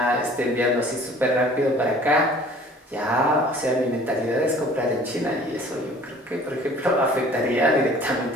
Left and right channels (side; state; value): both; normal; correlation 0.50